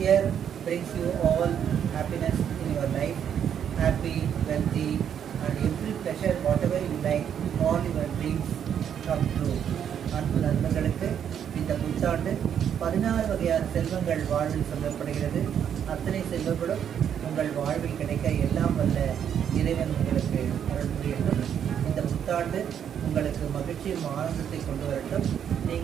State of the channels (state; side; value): quieter; left; 8.8 dB